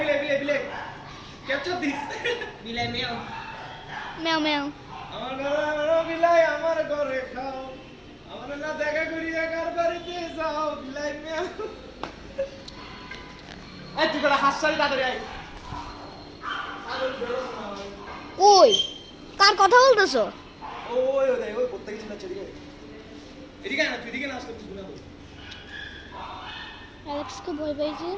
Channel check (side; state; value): both; identical; correlation 1.00